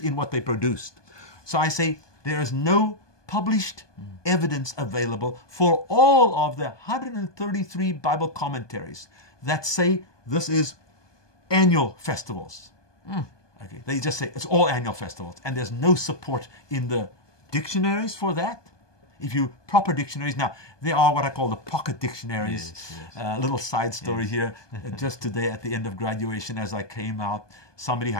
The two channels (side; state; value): right; late; 1.2 ms